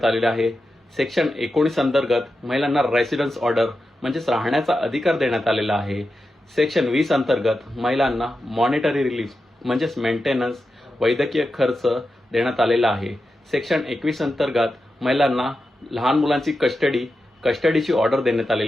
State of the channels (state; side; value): normal; both; correlation 0.90